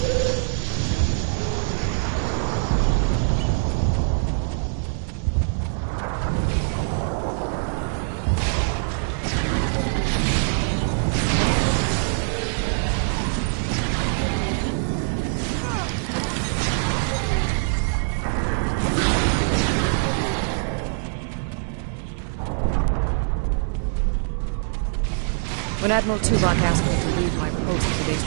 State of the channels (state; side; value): silent; left; 63 dB below the other